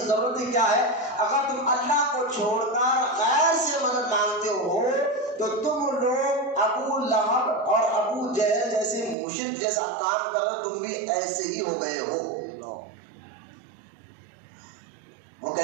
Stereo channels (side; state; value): left; drops out; at 9.2 s